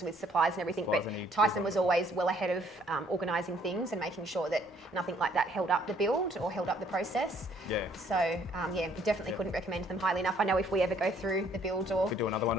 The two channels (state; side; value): normal; both; correlation 0.63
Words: with supplies and everything, but Tyson was always well ahead of organising things and making sure that nothing like that held up the build or held up the process. So we definitely couldn't recommend them highly enough. I know if we ever go through the build or we do another one,